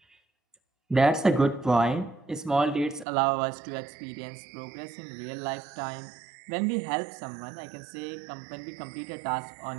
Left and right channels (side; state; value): left; drops out; at 3.1 s